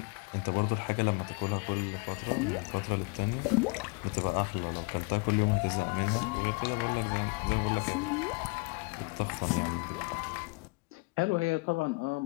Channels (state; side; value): quieter; right; 30.1 dB